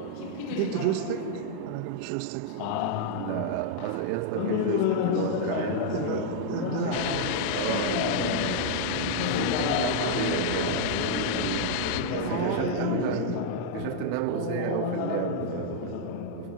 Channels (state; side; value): different; both; correlation -0.01